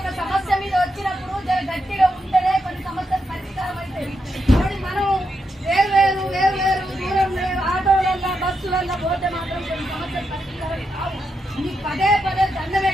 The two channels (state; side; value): normal; both; correlation 0.84